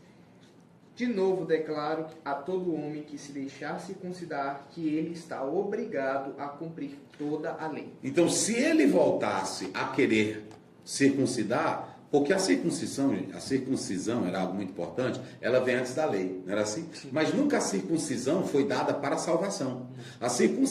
De novo declaro a todo homem que se deixar circuncidar que ele está obrigado a cumprir toda a lei. Então, se ele voltasse a querer circuncidar, porque a circuncisão era algo muito importante, ela vem antes da lei, não era assim? Sim. Mas nunca a circuncisão foi dada para a salvação. A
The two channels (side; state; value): both; identical; correlation 1.00